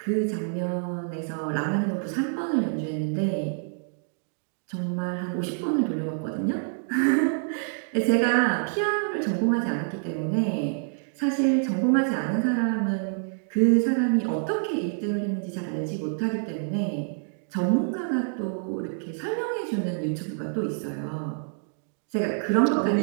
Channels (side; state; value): left; silent; 60 dB below the other